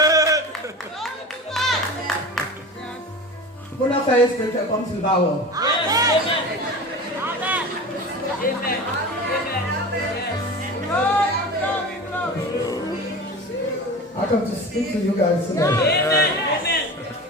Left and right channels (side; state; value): both; normal; correlation 0.32